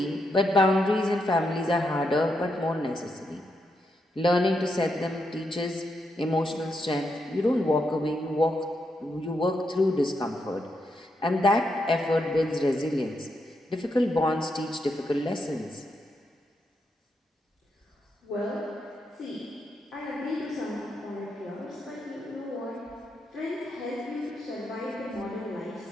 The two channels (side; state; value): both; normal; correlation 0.82